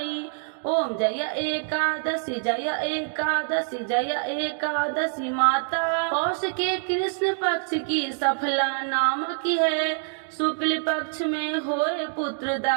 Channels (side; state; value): left; silent; digital silence